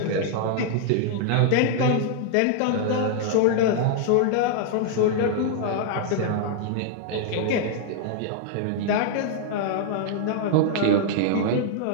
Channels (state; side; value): different; both; correlation 0.00